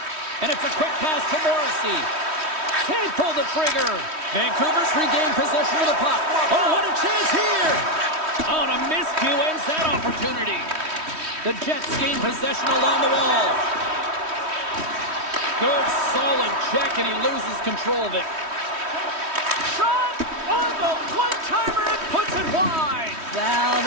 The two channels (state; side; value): late; left; 3.1 ms